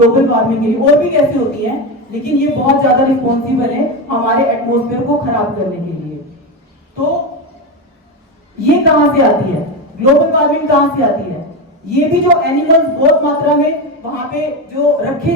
वार्मिंग के लिए, और भी कैसे होती है, लेकिन ये बहुत ज्यादा रिस्पॉन्सिबल है हमारे एटमॉस्फेयर को खराब करने के लिए। तो ये कहां से आती है? ग्लोबल वार्मिंग कहां से आती है? ये भी जो एनिमल्स बहुत मात्रा में वहां पे जो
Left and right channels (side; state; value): both; normal; correlation 0.16